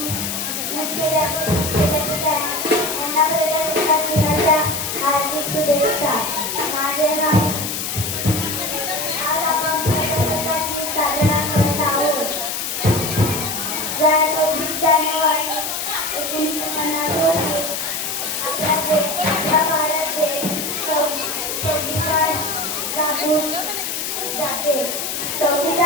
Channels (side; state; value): left; noise; hiss, 3 dB below the sound